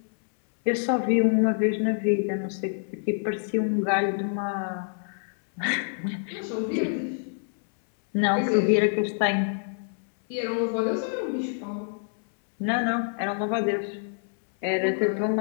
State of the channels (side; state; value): right; silent; 61 dB below the other